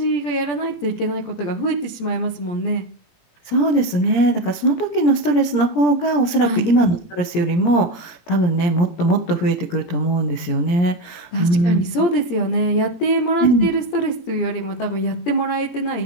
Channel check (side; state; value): right; late; 17 ms